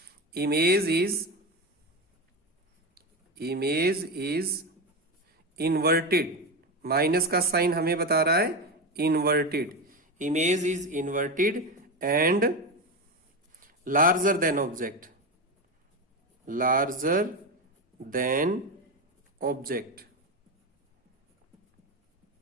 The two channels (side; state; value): both; normal; correlation 0.17